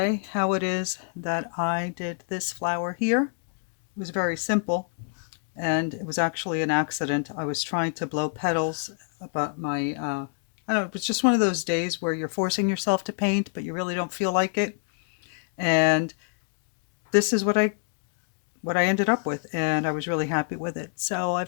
how it is that I did this flower here. It was very simple and it was actually an accident. I was trying to blow petals, but I don't know, it was just one of those days where you're forcing yourself to paint but you really don't feel like it. And this is what I ended up with, and I was really happy with it. So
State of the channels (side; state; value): right; silent; 60 dB below the other